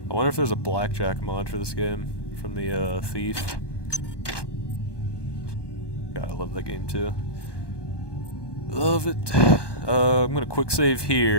I wonder if there's a blackjack mod for this game from the Thief. God, I love that game too. Love it. I'm gonna quick save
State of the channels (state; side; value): late; right; 1.2 ms